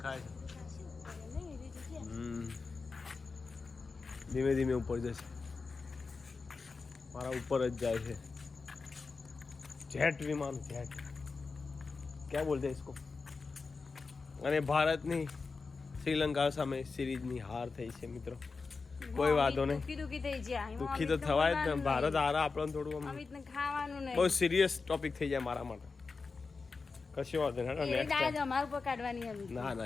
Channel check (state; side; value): quieter; right; 4.4 dB